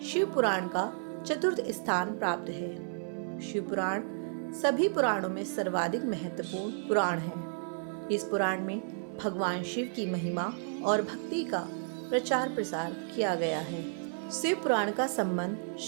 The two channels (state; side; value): silent; left; digital silence